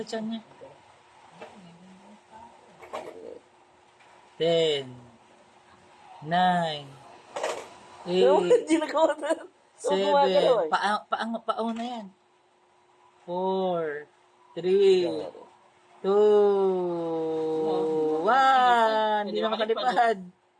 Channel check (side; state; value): both; identical; correlation 1.00